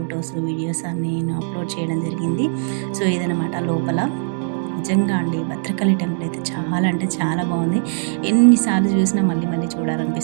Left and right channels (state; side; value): silent; left; 65 dB below the other